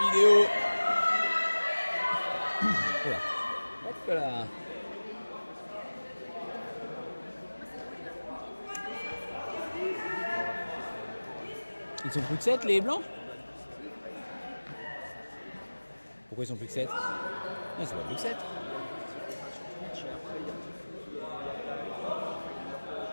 vidéo. Voilà. Hop là. Ils sont plus que 7 les blancs? Pourquoi ils sont plus que 7? Non, c'est pas plus que 7.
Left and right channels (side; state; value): both; inverted; correlation -1.00